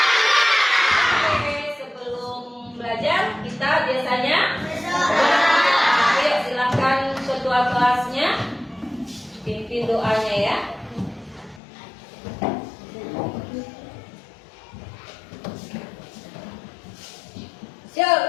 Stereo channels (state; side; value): drops out; right; at 11.6 s